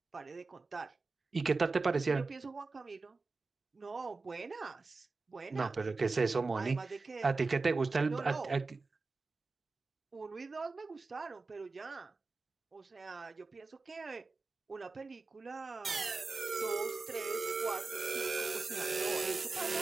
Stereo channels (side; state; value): left; quieter; 3.9 dB